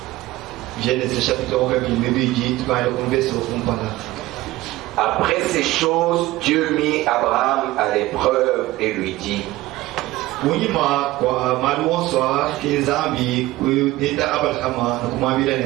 Genèse chapitre 22. Après ces choses, Dieu mit Abraham à l'épreuve et lui dit:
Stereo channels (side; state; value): left; quieter; 17.8 dB